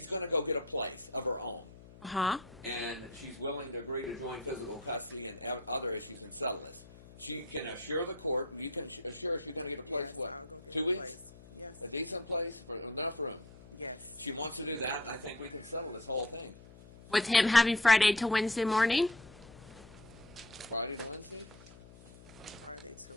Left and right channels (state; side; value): noise; left; hum, 20 dB below the sound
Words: going to go get a place of her own. Uh-huh. And she's willing to agree to join physical custody and other issues and settle this. She can assure the court, you can assure she's going to get a place, Yes, what, I'll go get 2 a weeks? place. Yes. A decent place for enough room. Yes. She wants to do that, and I think we can settle this whole thing. With him having Friday to Wednesday morning? Friday to Wednesday? Friday to